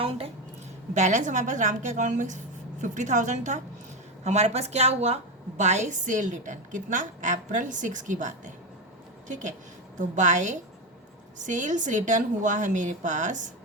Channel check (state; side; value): normal; both; correlation 0.14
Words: है, बैलेंस हमारे पास राम के अकाउंट में 50,000 था। हमारे पास क्या हुआ? बाय सेल रिटर्न कितना? अप्रैल 6 की बात है, ठीक है। तो बाय सेल्स रिटर्न हुआ है मेरे पास